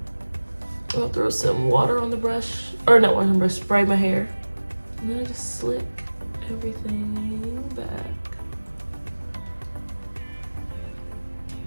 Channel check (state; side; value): inverted; both; correlation -1.00